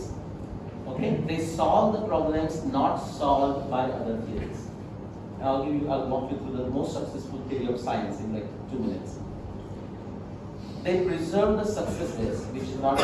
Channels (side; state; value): both; identical; correlation 1.00